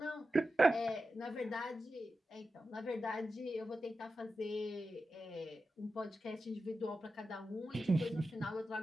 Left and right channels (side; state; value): both; normal; correlation 0.91